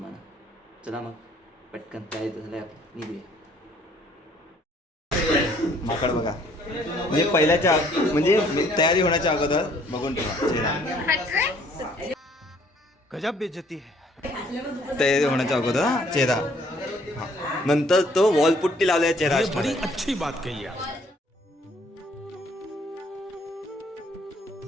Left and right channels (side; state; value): both; normal; correlation 0.61